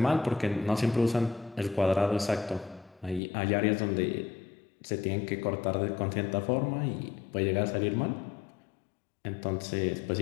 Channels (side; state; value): right; drops out; at 3.2 s